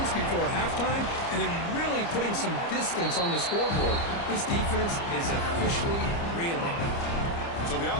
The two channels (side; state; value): right; late; 29 ms